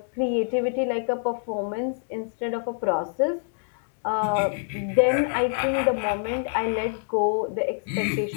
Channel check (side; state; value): right; silent; digital silence